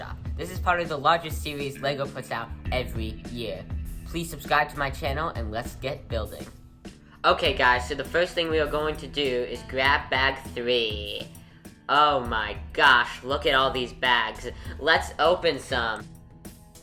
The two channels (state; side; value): identical; both; correlation 1.00